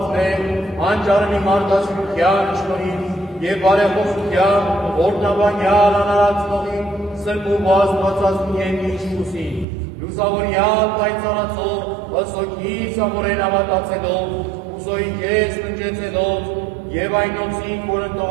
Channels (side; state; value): left; drops out; at 9.7 s